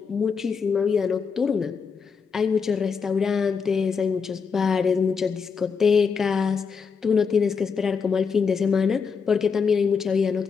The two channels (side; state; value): right; quieter; 5.7 dB